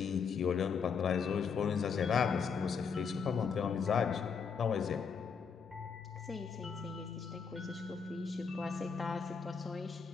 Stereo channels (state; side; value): quieter; right; 6.1 dB